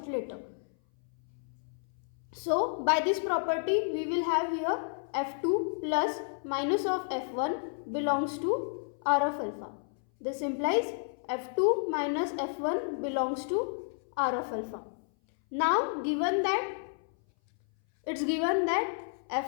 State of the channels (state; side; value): silent; right; 57 dB below the other